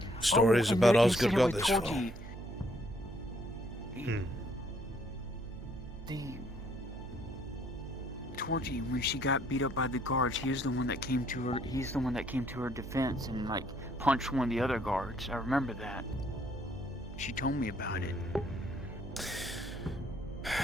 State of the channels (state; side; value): noise; right; hum, 14 dB below the sound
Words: stories and about the Osgood incident got with this far. Torgy. The Torgy, when she got beat up by the guards, he was the one that came to her. He's the one that came to her defense and like punched one of the other guards. I remember that. She told me about it.